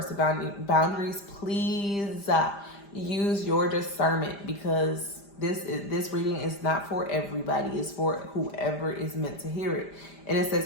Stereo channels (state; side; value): late; right; 5.0 ms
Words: to boundaries. Please use your discernment, because this reading is not for everybody. It's for whoever is meant to hear it. And it